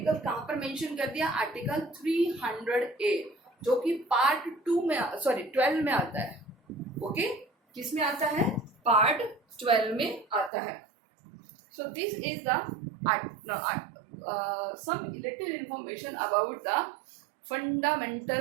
कहाँ पर मेंशन कर दिया? आर्टिकल 300A, जो कि पार्ट 2 में 12 में आता है. ओके, किस में आता है? पार्ट 12 में आता है. So this is the some little information about the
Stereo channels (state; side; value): drops out; left; at 10.5 s